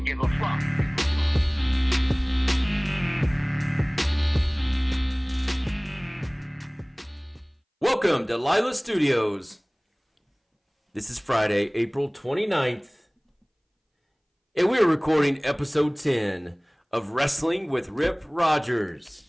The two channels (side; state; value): both; identical; correlation 1.00